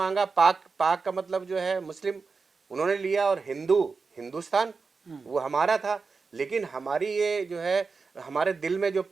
पाक पाक का मतलब जो है मुस्लिम उन्होंने लिया, और हिंदुस्तान वो हमारा था। लेकिन हमारी ये जो है हमारे दिल में जो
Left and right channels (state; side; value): quieter; left; 4.7 dB